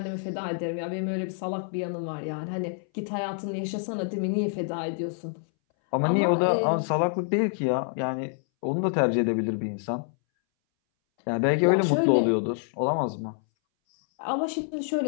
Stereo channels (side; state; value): right; silent; 60 dB below the other